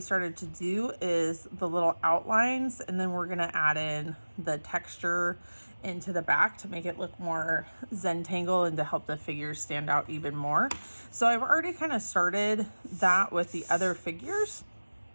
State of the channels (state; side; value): inverted; both; correlation -1.00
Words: to do, is the little outlines, and then we're going to add in the texture into the back to make it look more Zentangle and to help the figures stand out even more. So I've already kind of started that with the other figures,